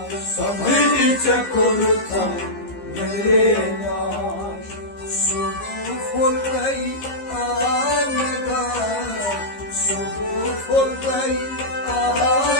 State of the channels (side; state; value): right; late; 15 ms